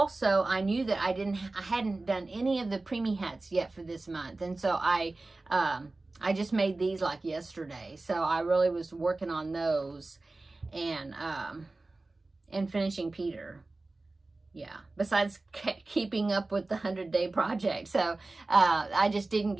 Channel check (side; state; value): left; quieter; 3.2 dB